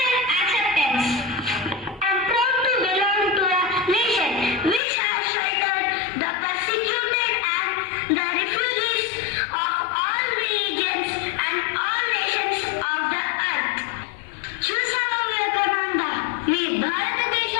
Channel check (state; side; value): drops out; right; at 4.8 s